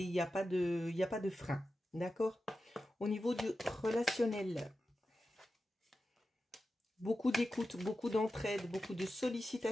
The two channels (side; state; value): both; normal; correlation 0.92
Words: il n'y a pas de frein, d'accord? Au niveau du relationnel, beaucoup d'écoute, beaucoup d'entraide, beaucoup de